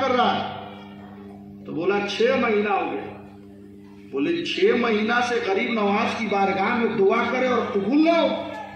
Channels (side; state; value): both; identical; correlation 1.00